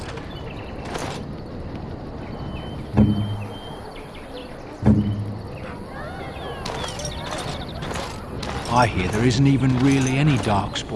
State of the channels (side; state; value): both; identical; correlation 1.00